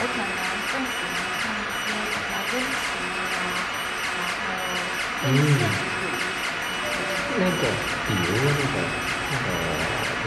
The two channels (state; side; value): identical; both; correlation 1.00